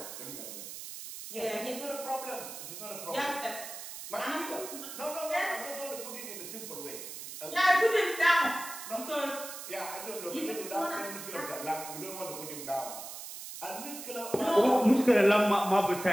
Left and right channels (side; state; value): right; noise; hiss, 10 dB below the sound